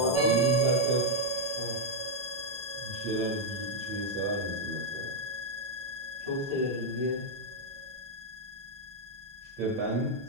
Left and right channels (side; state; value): both; normal; correlation -0.01